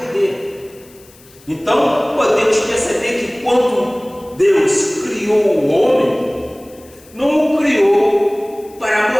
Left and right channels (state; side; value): noise; left; hiss, 26 dB below the sound